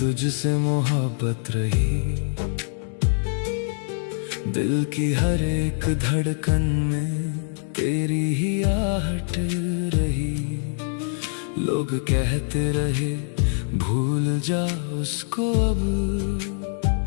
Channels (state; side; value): silent; right; 60 dB below the other